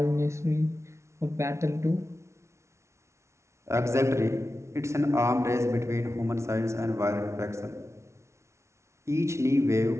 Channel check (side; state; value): left; late; 0.13 ms